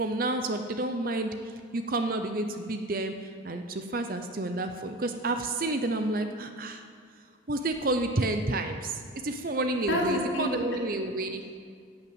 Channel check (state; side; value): normal; both; correlation 0.33